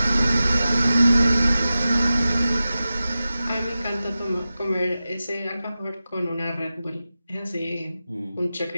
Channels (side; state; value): both; inverted; correlation -0.94